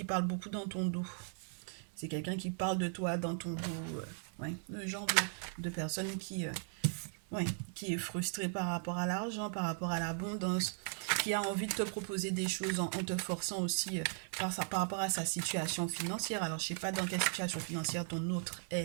parle beaucoup dans ton dos. C'est quelqu'un qui parle de toi dans ton dos. Ouais, le genre de personne ouais, qui est frustré par rapport à l'argent, par rapport à l'abondance, qui a envie de te proposer des choses en te forçant aussi par rapport à sa situation financière. Alors, je sais pas dans quelle situation financière ton autre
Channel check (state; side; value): silent; left; 53 dB below the other